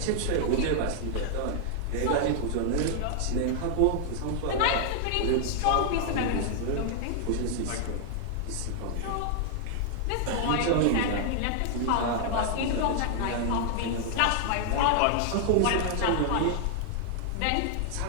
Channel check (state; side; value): different; both; correlation -0.01